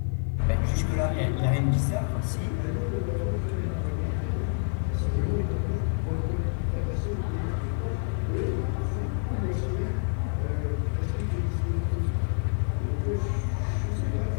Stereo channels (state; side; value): silent; right; 57 dB below the other